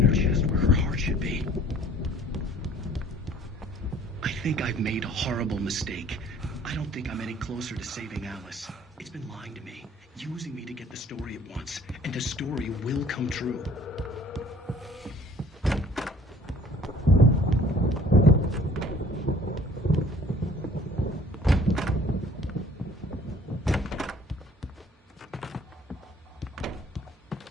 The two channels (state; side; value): normal; both; correlation 0.52